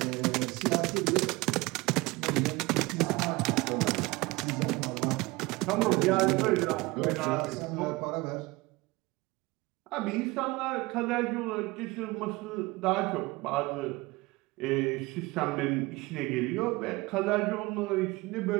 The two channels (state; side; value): quieter; left; 22.4 dB